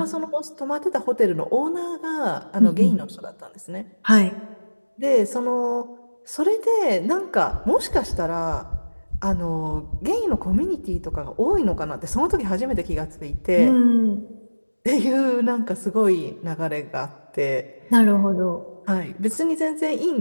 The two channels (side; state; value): both; inverted; correlation -1.00